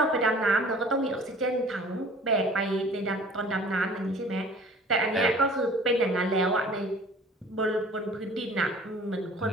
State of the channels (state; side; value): normal; both; correlation 0.48